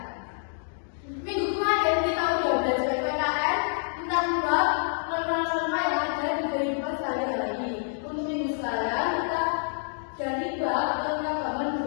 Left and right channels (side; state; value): right; silent; digital silence